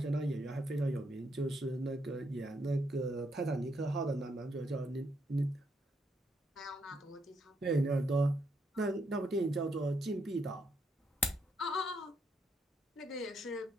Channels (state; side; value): normal; both; correlation 0.76